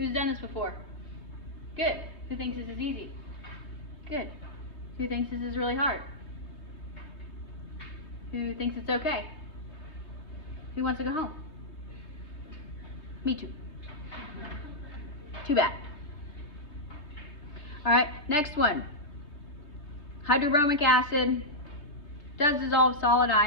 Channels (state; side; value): late; right; 3.2 ms